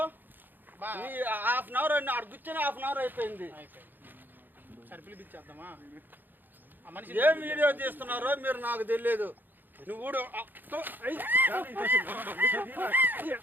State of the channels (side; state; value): left; late; 0.090 ms